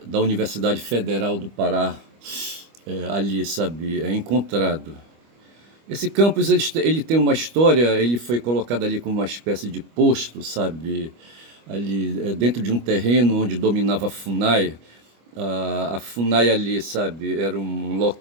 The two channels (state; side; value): late; left; 25 ms